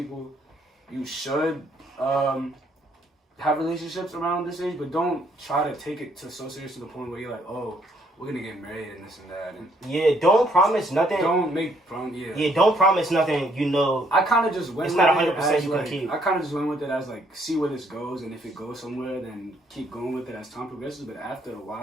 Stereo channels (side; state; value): both; normal; correlation 0.68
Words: you should have relationships around this age, but don't try to take it so serious to the point where you're like, oh, we're gonna get married and this and that, and Yeah, don't promise nothing. don't make prom. Yeah. Yeah, don't promise nothing. You know, I kind of just went. It's with not it 100% as, you can like, keep. I kind of just went with it as like see where this goes, and if it goes somewhere, then keep going with it as time progresses. But after a